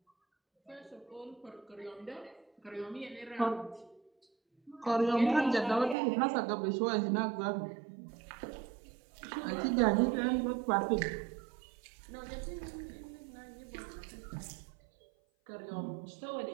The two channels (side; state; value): left; drops out; at 6.0 s